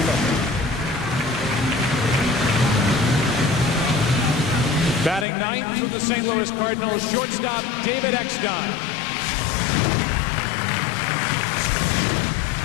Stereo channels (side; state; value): right; drops out; at 5.2 s